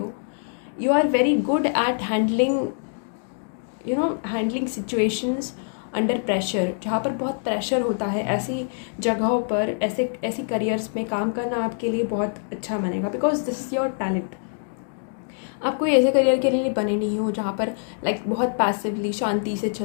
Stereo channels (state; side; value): silent; right; digital silence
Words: You are very good at handling, handling situations under pressure, जहाँ पर बहुत प्रेशर होता है, ऐसी जगहों पर ऐसी करियर्स में काम करना आपके लिए बहुत अच्छा बनेगा, because this is your talent. आप कोई ऐसे करियर के लिए बने नहीं हो जहाँ पर बहुत पैसिवली शांति से